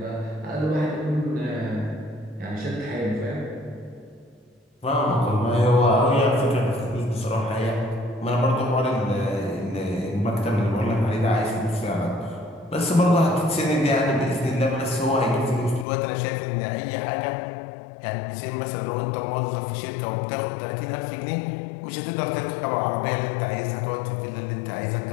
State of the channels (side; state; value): right; drops out; at 15.9 s